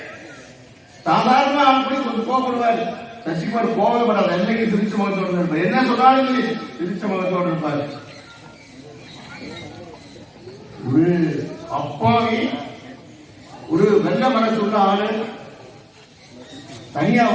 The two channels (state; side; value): identical; both; correlation 1.00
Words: சாதாரண அப்படி கொஞ்சம் கோபப்படுவார். சசிகுமார் கோபப்படாத, என்னைக்கு திருச்சி முகத்தோடு இருப்பார். என்ன சொன்னாலும் திருச்சி முகத்தோடு இருப்பார். ஒரு அப்பாவி, ஒரு வெள்ள மனசு உள்ள ஆளு தனியா